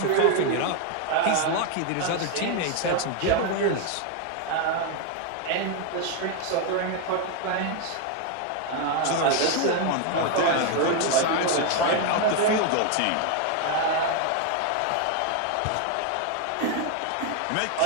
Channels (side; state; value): both; different; correlation 0.01